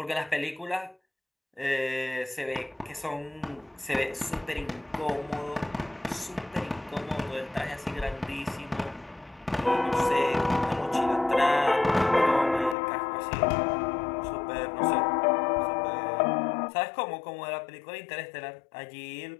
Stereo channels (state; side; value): drops out; right; at 12.8 s